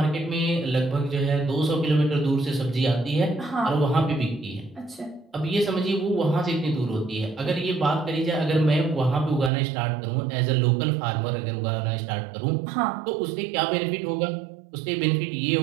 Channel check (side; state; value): left; drops out; at 9.5 s